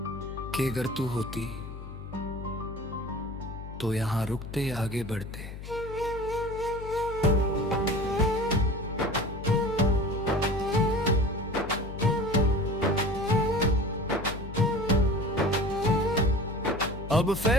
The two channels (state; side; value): noise; left; hum, 11 dB below the sound